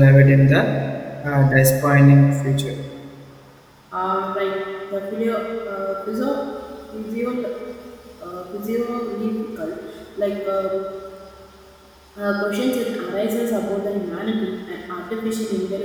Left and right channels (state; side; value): identical; both; correlation 1.00